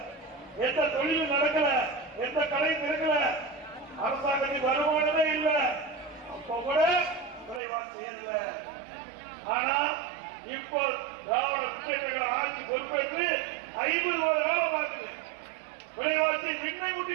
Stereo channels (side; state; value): left; drops out; at 7.6 s